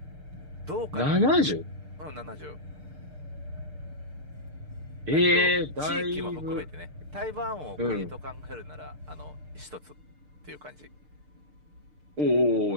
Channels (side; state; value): left; late; 6.7 ms